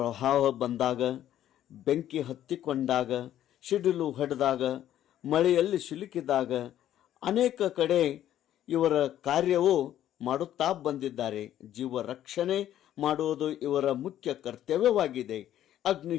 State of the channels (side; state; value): right; quieter; 11.8 dB